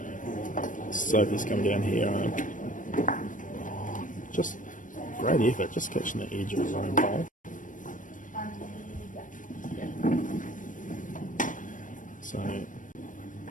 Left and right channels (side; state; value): right; late; 0.38 ms